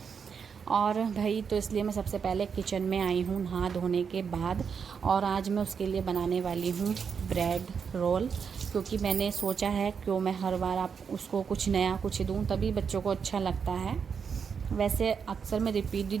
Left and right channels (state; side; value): quieter; left; 6.4 dB